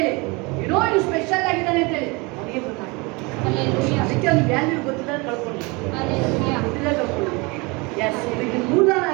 ಏನೋ ಇದು ಸ್ಪೆಷಲ್ ಆಗಿದ್ದಾನೆ ಅಂತ ಹೇಳಿ ಅವನಿಗೆ ಗೊತ್ತಾಗ್ತದೆ. ಅದಕ್ಕೆ ಅವ್ನು ವ್ಯಾಲ್ಯೂ ಗೊತ್ತಿಲ್ಲ ಕಳ್ಕೊಂಡು ಎಸ್ ಇದಕ್ಕೆ ಮೂಲಾನ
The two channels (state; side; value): quieter; left; 27.0 dB